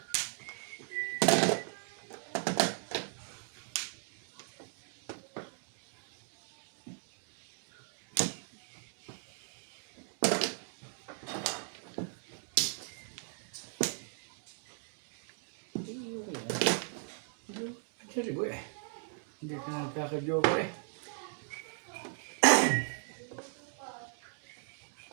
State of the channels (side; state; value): left; silent; 53 dB below the other